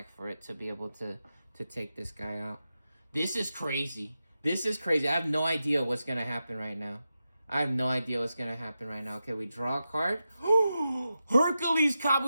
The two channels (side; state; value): both; inverted; correlation -0.90